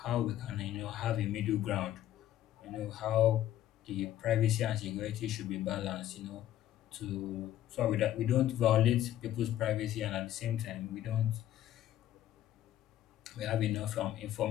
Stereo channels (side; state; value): right; quieter; 12.4 dB